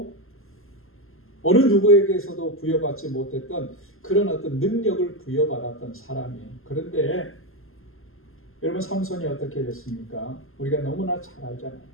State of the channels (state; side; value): late; right; 0.61 ms